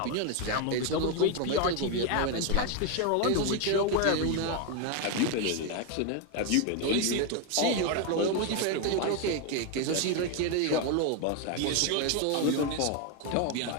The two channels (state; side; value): different; both; correlation 0.01